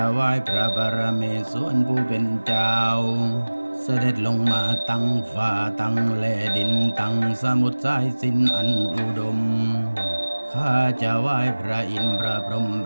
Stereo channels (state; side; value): inverted; both; correlation -1.00